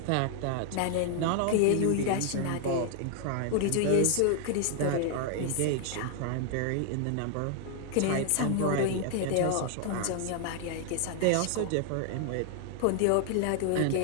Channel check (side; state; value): both; different; correlation 0.00